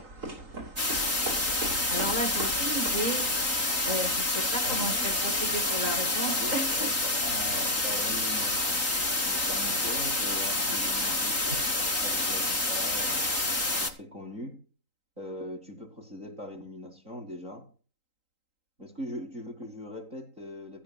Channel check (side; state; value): left; late; 3.9 ms